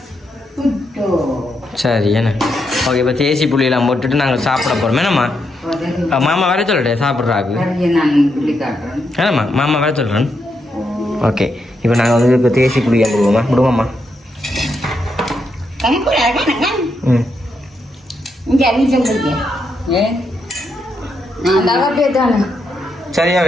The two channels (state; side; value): normal; both; correlation 0.81